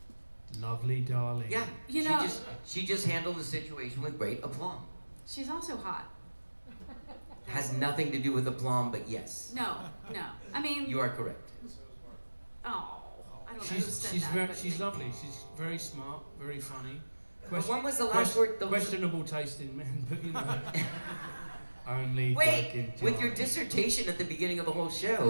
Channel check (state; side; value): inverted; both; correlation -1.00